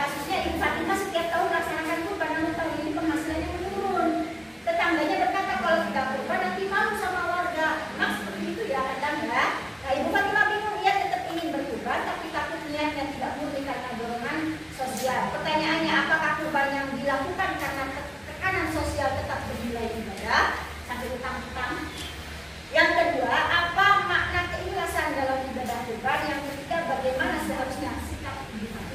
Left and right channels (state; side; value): identical; both; correlation 1.00